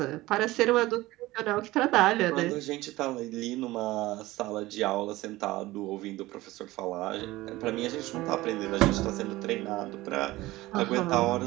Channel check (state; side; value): quieter; left; 18.4 dB